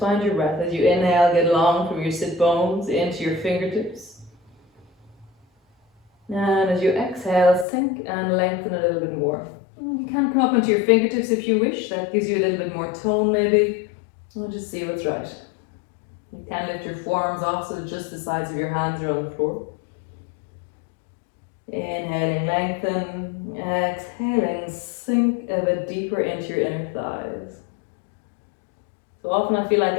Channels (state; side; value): drops out; right; at 7.7 s